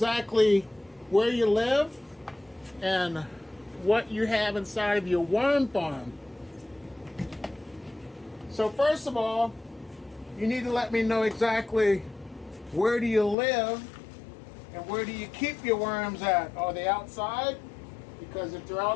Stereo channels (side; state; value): right; drops out; at 13.4 s